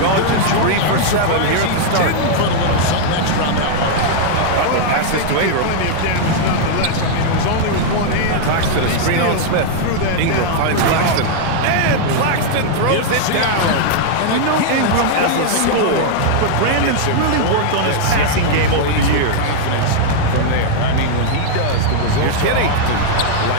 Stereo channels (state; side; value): different; both; correlation -0.01